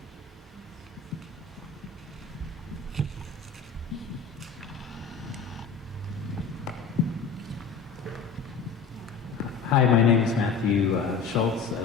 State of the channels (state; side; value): quieter; right; 5.5 dB